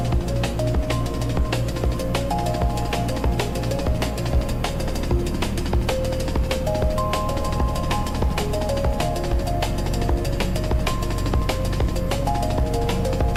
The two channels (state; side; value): identical; both; correlation 1.00